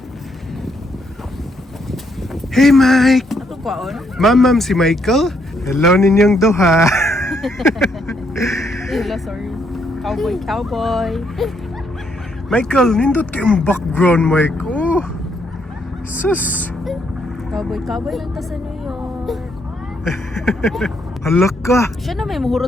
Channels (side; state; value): both; normal; correlation 0.74